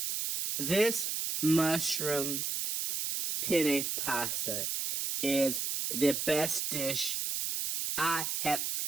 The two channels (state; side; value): noise; right; hiss, 1 dB below the sound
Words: This mushroom penne pasta is the best dish I have